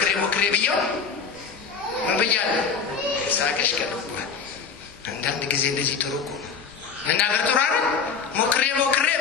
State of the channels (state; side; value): quieter; right; 5.9 dB